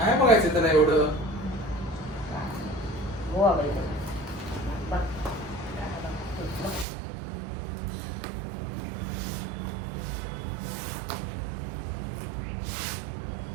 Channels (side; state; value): left; drops out; at 6.9 s